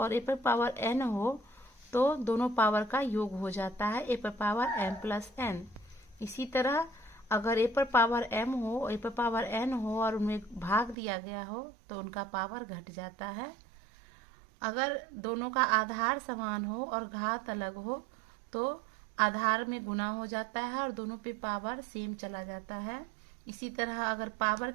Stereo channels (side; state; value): left; drops out; at 11.0 s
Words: ए पर पावर n हो तो दोनों पावर का योग हो जाता है ए पर पावर m प्लस n। इसी तरह अगर ए पर पावर m हो और ए पर पावर n हो और उनमें भाग दिया गया हो तो उनका पावर घट जाता है। अगर दोनों का आधार समान हो और घात अलग हो तो आधार में गुना हो जाता है और दोनों पे पावर सेम चला जाता है। इसी तरह अगर पावर